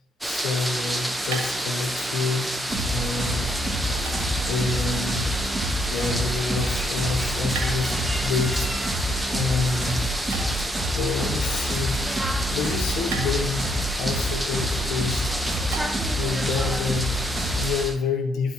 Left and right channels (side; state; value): both; normal; correlation 0.73